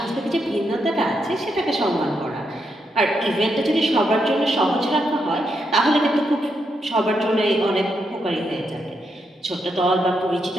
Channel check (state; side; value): normal; both; correlation 0.81